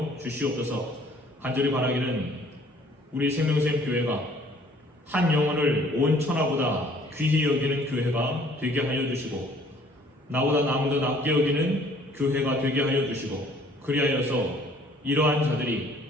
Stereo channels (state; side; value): normal; both; correlation 0.57